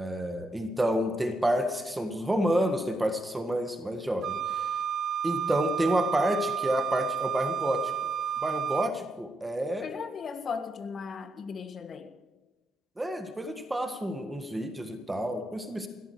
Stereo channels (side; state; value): both; normal; correlation 0.81